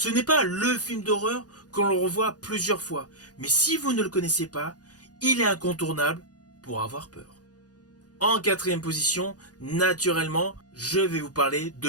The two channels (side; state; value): right; late; 0.68 ms